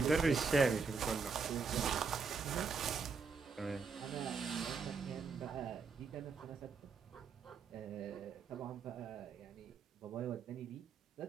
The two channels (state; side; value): quieter; left; 5.1 dB